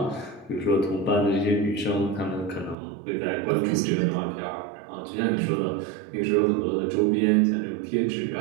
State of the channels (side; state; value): left; drops out; at 2.8 s